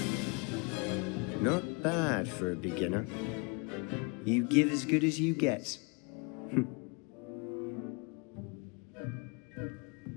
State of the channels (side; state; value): right; quieter; 32.4 dB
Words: Not bad for a beginner. You give as good as you get.